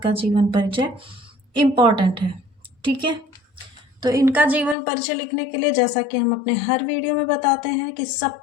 जीवन परिचय इम्पॉर्टेंट है। ठीक है, तो इनका जीवन परिचय लिखने के लिए, जैसा कि हम अपने हर वीडियो में बताते हैं, कि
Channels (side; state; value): right; drops out; at 4.8 s